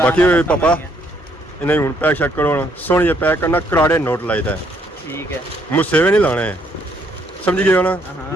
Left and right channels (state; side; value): normal; both; correlation 0.69